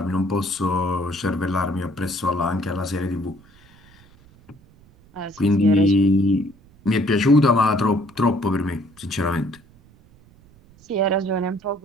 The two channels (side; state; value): right; noise; rumble, 27 dB below the sound